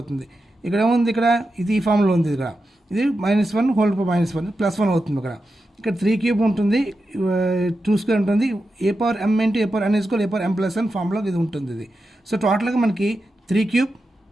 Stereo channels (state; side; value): normal; both; correlation 0.89